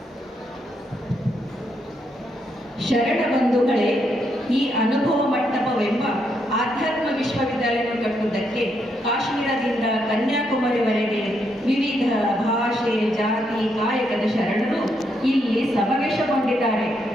ಶರಣ ಬಂಧುಗಳೇ, ಈ ಅನುಭವ ಮಂಟಪವೆಂಬ ಆಧ್ಯಾತ್ಮ ವಿಶ್ವವಿದ್ಯಾಲಯ ಕಟ್ಟುವುದಕ್ಕೆ ಕಾಶ್ಮೀರದಿಂದ ಕನ್ಯಾಕುಮಾರಿವರೆಗೆ ವಿವಿಧ ಭಾಷೆ, ಜಾತಿ, ಕಾಯಕದ ಶರಣರು ಇಲ್ಲಿ ಸಮಾವೇಶಗೊಂಡಿದ್ದಾರೆ.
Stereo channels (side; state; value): both; normal; correlation 0.78